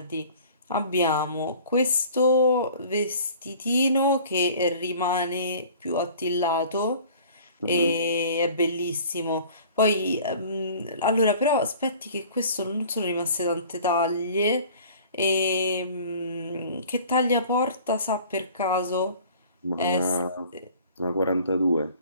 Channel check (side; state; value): both; inverted; correlation -0.48